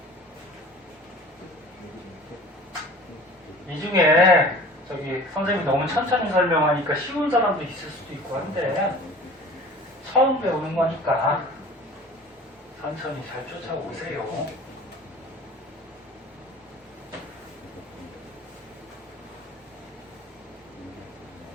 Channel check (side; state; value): both; normal; correlation 0.43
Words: 이 중에 저기 선생님이 너무 천천히 설명하니까 쉬운 사람도 있을 수도 있고 한데 처음 배우는 거니까 천천히 잘 쫓아오세요.